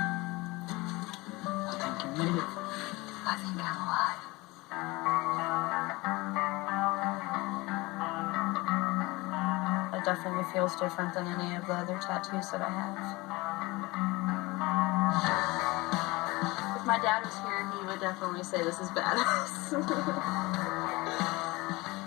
I think you made it. I think I'm alive. It definitely feels different than any of the other tattoos that I have. If my dad was here, he would definitely say this is badass.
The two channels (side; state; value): right; quieter; 22.5 dB